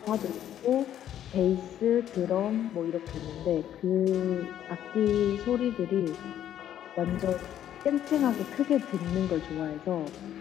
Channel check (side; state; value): right; quieter; 10.9 dB